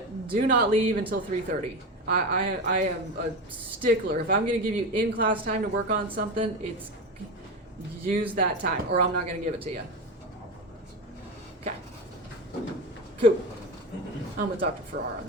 do not leave until 3:30. I am a stickler. If I'm going to give you in-class time to work on something, it's use that time, or I'm not going to give it to you. Okay. Cool. I'm with Dr. Farrar on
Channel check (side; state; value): both; normal; correlation 0.21